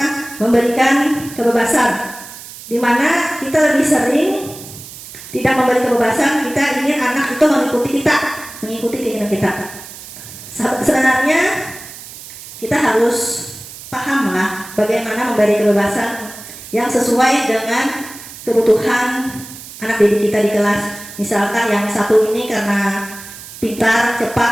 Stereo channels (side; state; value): right; noise; hiss, 15 dB below the sound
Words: memberikan kebebasan, di mana kita lebih sering tidak memberi kebebasan, kita ingin anak itu mengikuti keinginan kita. Sebenarnya kita harus pahamlah bagaimana memberi kebebasan yang sesuai dengan kebutuhan anak didik kita di kelas. Misalkan yang satu ini karena pintar,